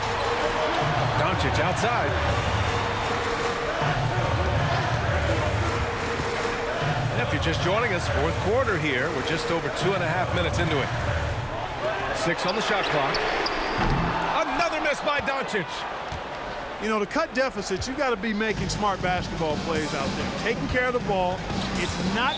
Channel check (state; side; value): identical; both; correlation 1.00